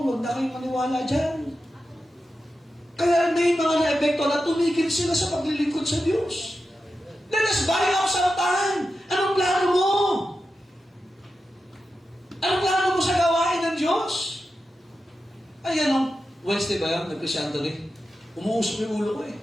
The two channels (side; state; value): both; normal; correlation 0.91